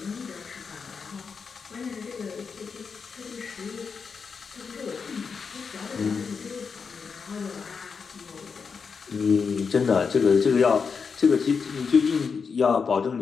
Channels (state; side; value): quieter; right; 5.6 dB